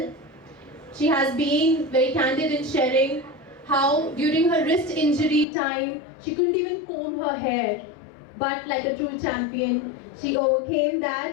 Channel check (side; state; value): right; drops out; at 5.5 s